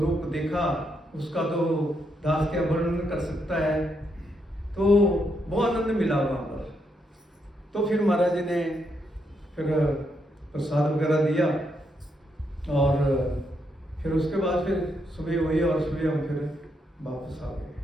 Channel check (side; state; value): both; normal; correlation 0.79